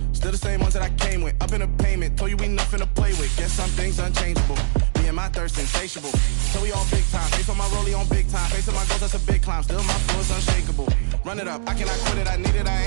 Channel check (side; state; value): left; silent; digital silence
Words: still the same ones that I came with. Up in the payment, told you we nothing to play with. Guess some things unchangeable. Me and my thirst insatiable. So we all big time. Face on my rollie on big time. Facing my goals, that's a big climb. Still my flow is unshakable. Run it up, I cannot quit it. I need it,